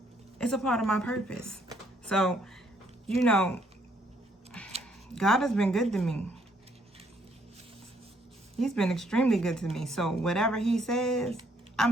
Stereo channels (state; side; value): normal; both; correlation 0.69